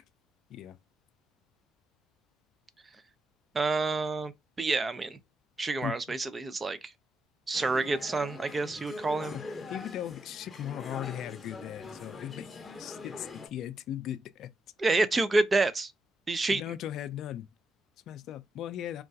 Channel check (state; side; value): normal; both; correlation 0.84